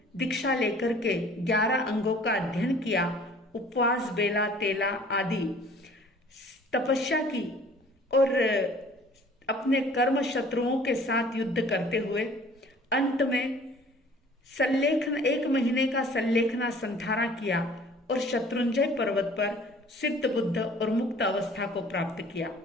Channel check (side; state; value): both; normal; correlation 0.51